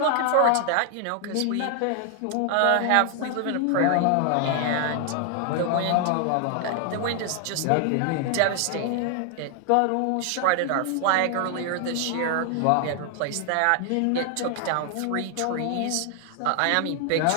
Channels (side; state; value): both; different; correlation 0.00